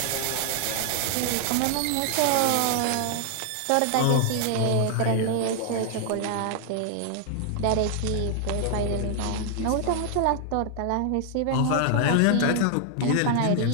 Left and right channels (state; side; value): different; both; correlation 0.00